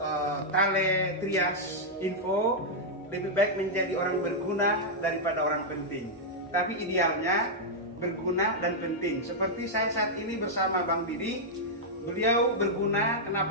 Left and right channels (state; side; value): normal; both; correlation -0.05